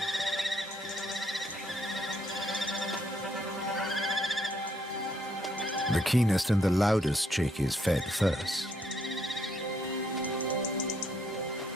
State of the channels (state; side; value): normal; both; correlation 0.71